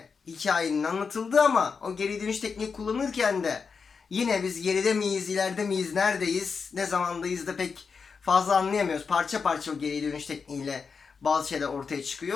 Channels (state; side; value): quieter; right; 5.4 dB